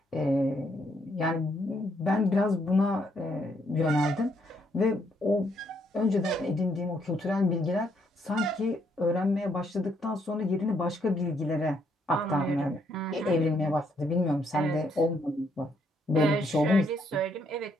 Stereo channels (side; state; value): both; normal; correlation 0.73